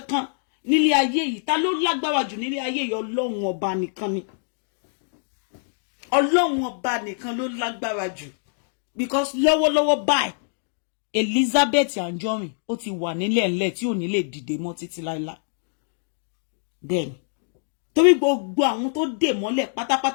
kan nílé ayé yìí ta ló lágbára jù nílé ayé yìí Ọlọ́run ọba nìkan ni Ọlọ́run ọba nìkan ló lágbára jù because lọ́wọ́lọ́wọ́ báyìí Elizabeth Anjorin ó ti wà nílẹ̀ ńlẹ̀ tí ò ní lè dìde mọ́ títí láíláí bẹ́ẹ̀ni torí gbogbo àwọn tó dè mọ́lẹ̀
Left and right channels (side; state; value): right; silent; digital silence